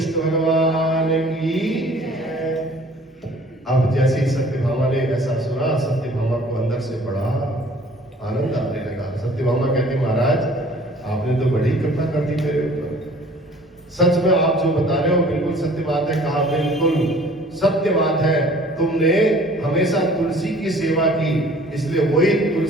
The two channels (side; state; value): both; normal; correlation 0.52